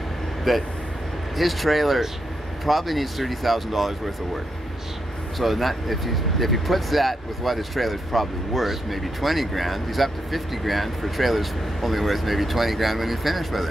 that his trailer probably needs $30,000 worth of work. So if he puts that with what his trailer's probably worth, maybe 20 grand, he's up to 50 grand for trailers only worth maybe 20 grand when he's finished with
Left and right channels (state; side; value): normal; both; correlation 0.83